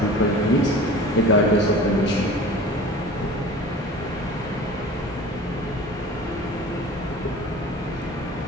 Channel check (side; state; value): both; normal; correlation 0.40